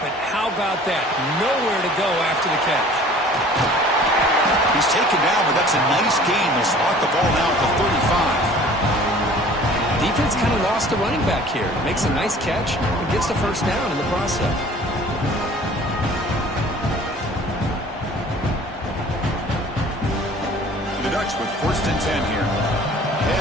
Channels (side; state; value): both; normal; correlation 0.49